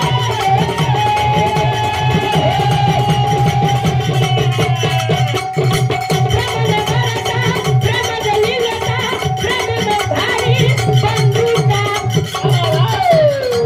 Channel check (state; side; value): identical; both; correlation 1.00